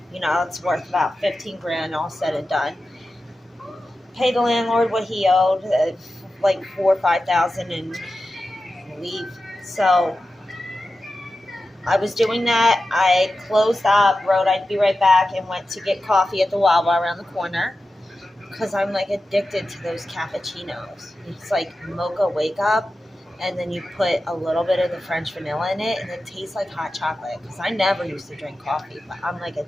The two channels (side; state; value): both; normal; correlation 0.93